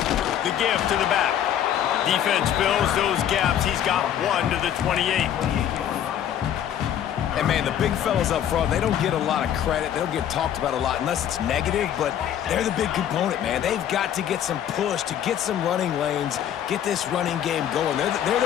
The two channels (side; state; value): right; quieter; 10.2 dB